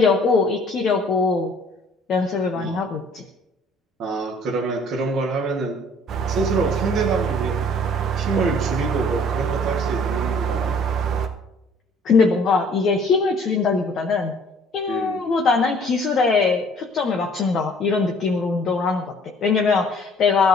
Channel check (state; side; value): normal; both; correlation 0.55